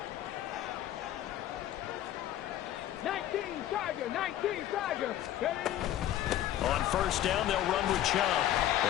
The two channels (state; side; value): quieter; right; 12.5 dB